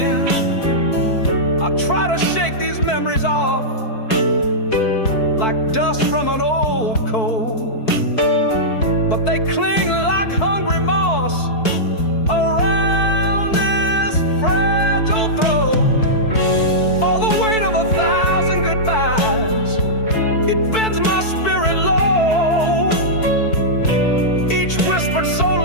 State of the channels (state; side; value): late; right; 4.6 ms